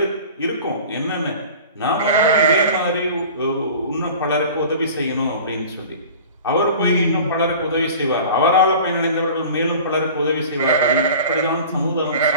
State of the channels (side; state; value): both; inverted; correlation -0.41